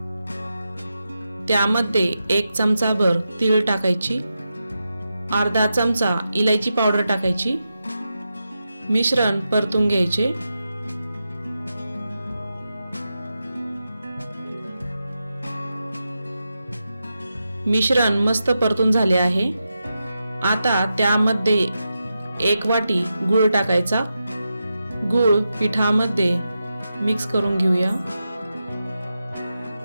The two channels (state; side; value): inverted; both; correlation -0.89